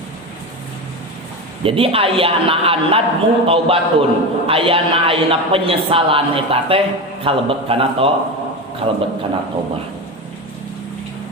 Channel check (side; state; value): both; normal; correlation 0.21